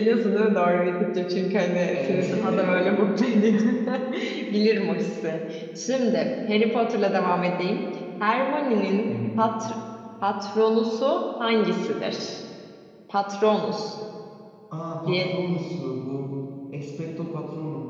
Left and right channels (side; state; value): both; identical; correlation 1.00